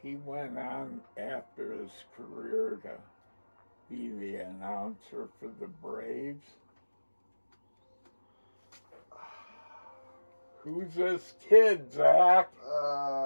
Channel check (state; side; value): inverted; both; correlation -1.00